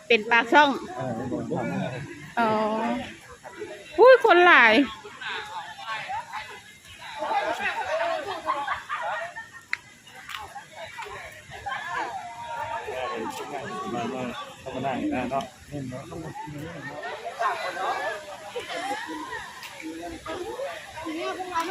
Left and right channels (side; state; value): both; identical; correlation 1.00